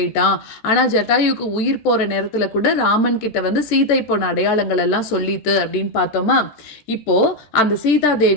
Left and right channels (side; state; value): right; late; 13 ms